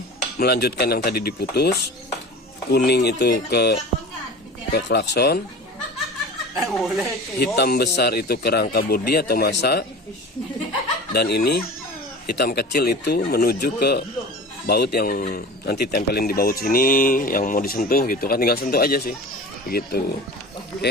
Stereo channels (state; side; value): normal; both; correlation 0.35